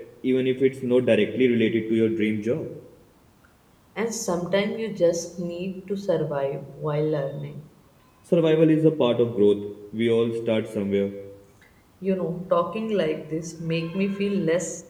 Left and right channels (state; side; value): identical; both; correlation 1.00